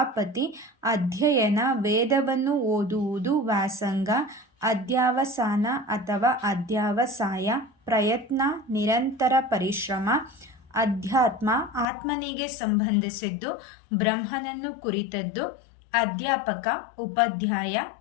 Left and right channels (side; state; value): right; drops out; at 11.9 s